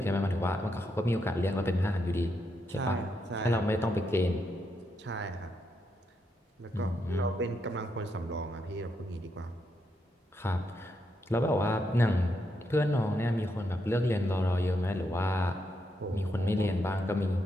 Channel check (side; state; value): both; normal; correlation 0.80